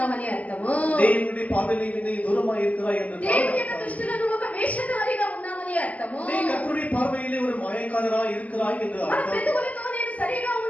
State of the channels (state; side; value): late; right; 0.073 ms